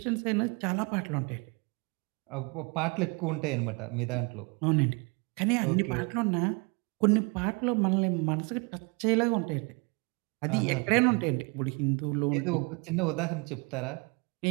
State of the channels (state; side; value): quieter; left; 30.7 dB